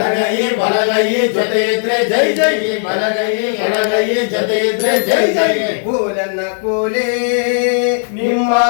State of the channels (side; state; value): right; silent; digital silence